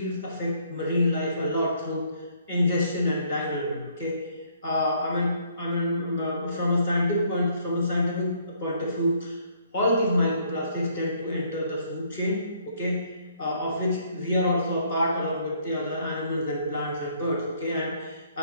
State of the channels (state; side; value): inverted; both; correlation -0.65